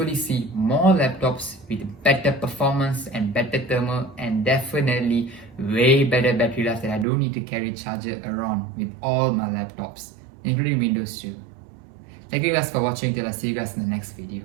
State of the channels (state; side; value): drops out; left; at 7.1 s